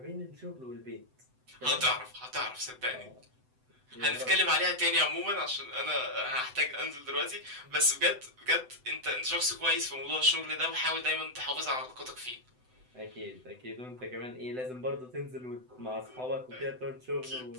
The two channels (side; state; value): left; late; 7.9 ms